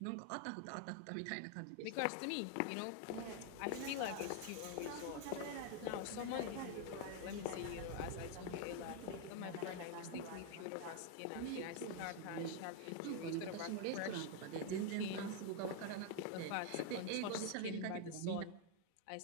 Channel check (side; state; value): both; different; correlation 0.01